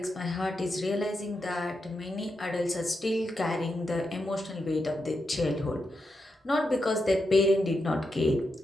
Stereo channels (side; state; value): both; normal; correlation 0.86